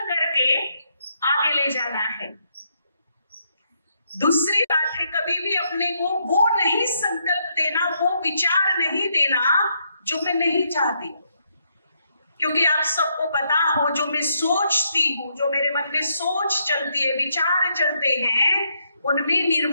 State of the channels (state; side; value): inverted; both; correlation -0.76